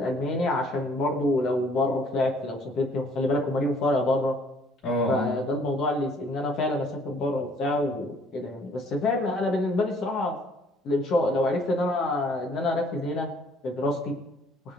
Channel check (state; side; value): normal; both; correlation 0.60